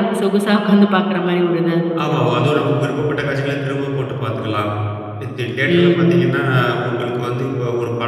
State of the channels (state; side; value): identical; both; correlation 1.00